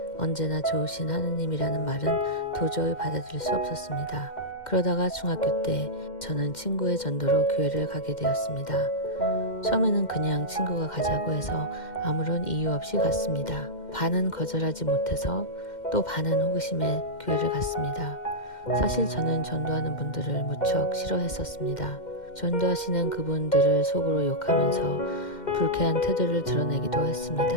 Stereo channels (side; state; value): right; late; 2.1 ms